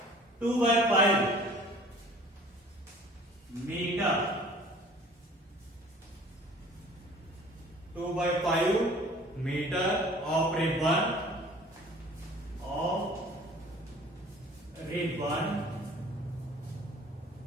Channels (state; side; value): normal; both; correlation 0.49